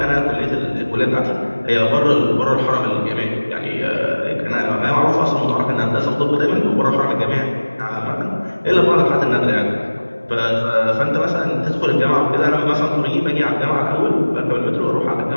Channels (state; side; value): inverted; both; correlation -1.00